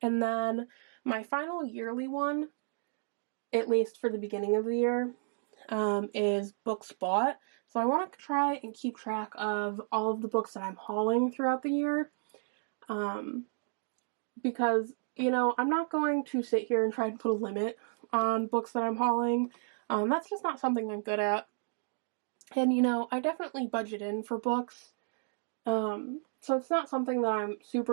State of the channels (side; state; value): left; silent; digital silence